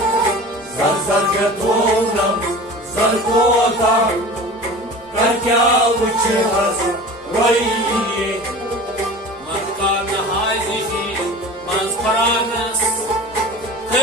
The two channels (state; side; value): normal; both; correlation 0.37